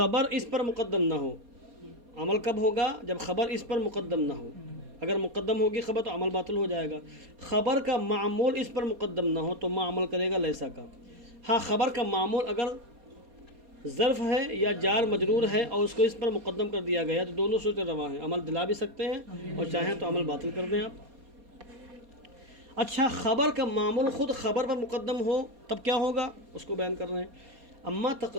اس پر مقدم نہ ہو، عمل کب ہوگا؟ جب خبر اس پر مقدم نہ ہو۔ اگر مقدم ہوگی خبر تو عمل باطل ہو جائے گا۔ خبر کا معمول اس پر مقدم نہ ہو تو عمل کرے گا لیسا کا۔ ہاں، خبر کا معمول اگر ظرف ہے یا جار مجرور ہے اور اس کو اس پر مقدم کر دیا گیا تو دونوں صورتیں رواں ہیں، عمل دلا بھی سکتے ہیں اور چاہیں تو عمل باطل کر دیں آپ۔ اچھا، خبر کا معمول خود خبر پر مقدم ہو تب کیا ہوگا؟ اس کو بیان کر رہے ہیں۔ اما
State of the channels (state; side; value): late; left; 4.2 ms